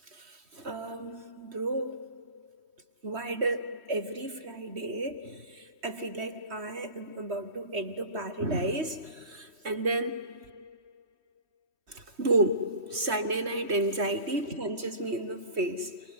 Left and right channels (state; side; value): late; left; 3.1 ms